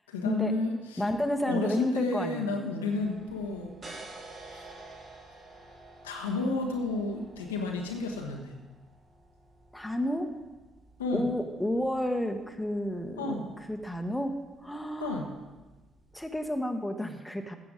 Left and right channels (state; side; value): normal; both; correlation 0.68